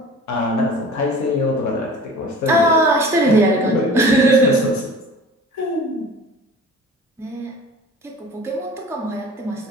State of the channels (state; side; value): normal; both; correlation 0.42